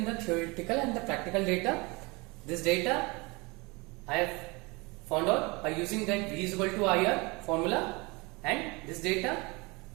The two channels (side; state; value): left; quieter; 26.2 dB